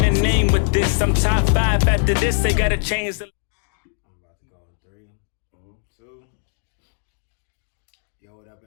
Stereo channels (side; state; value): right; silent; digital silence